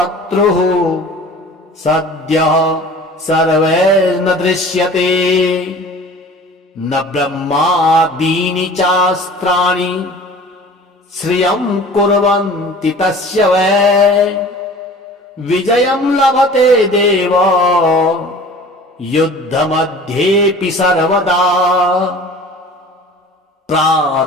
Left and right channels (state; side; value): normal; both; correlation 0.43